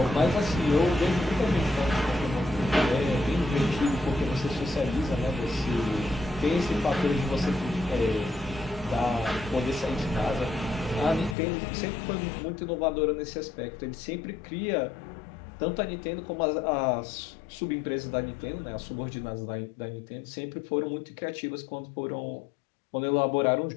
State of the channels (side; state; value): right; drops out; at 11.4 s